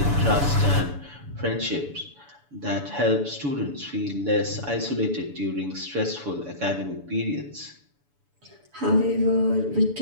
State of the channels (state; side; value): late; left; 7.0 ms